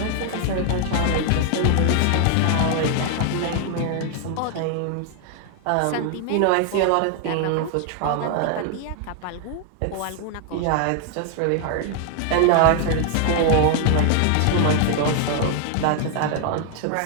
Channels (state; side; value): different; both; correlation 0.00